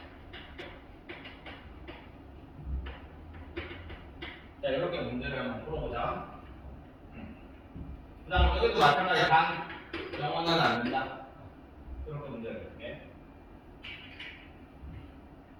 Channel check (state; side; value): identical; both; correlation 1.00